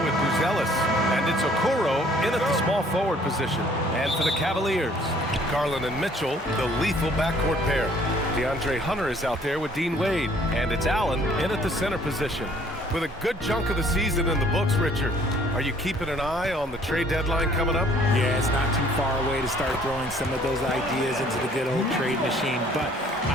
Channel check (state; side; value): normal; both; correlation 0.58